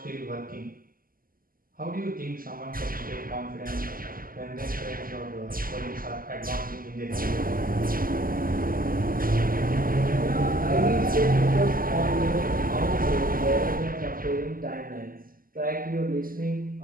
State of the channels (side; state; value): left; late; 0.42 ms